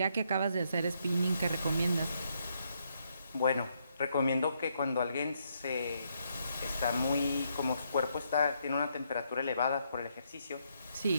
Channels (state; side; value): inverted; both; correlation -0.76